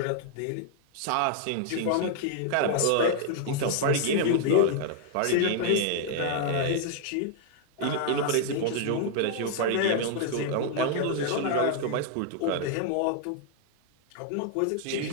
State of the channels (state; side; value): different; both; correlation 0.00